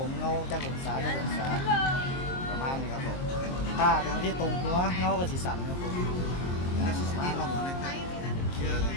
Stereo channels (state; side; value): late; right; 23 ms